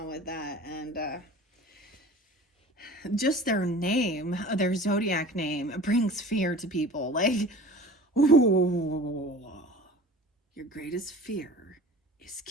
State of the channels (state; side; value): normal; both; correlation 0.41